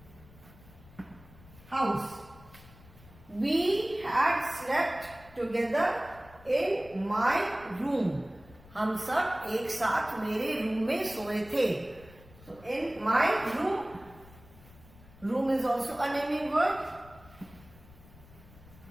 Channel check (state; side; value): noise; left; rumble, 22 dB below the sound